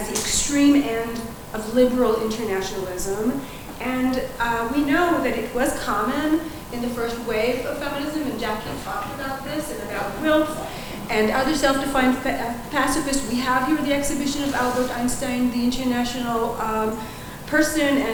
the extreme end of liberal internationalism, and we know that it was common in the first wave of feminism, and Jackie talked about this and about Wilf and other self-defined pacifists. We have here the exhibition of Albert Einstein, the international person,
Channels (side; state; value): both; identical; correlation 1.00